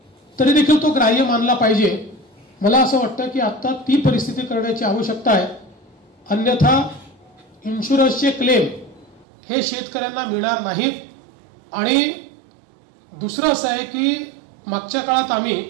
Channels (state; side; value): drops out; left; at 9.2 s